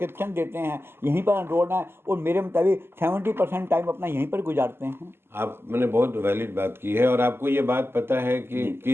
देते हैं, यहीं पर एनरोल है और मेरे मुताबिक 70% टाइम अपना यहीं पर गुजारते हैं। आपने बहुत वैलिड बात की है। और आपको ये बात पता है कि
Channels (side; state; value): left; late; 0.12 ms